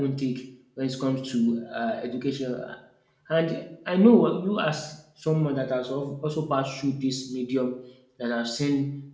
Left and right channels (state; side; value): identical; both; correlation 1.00